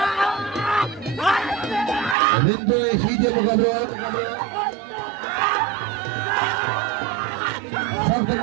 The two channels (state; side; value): drops out; left; at 2.1 s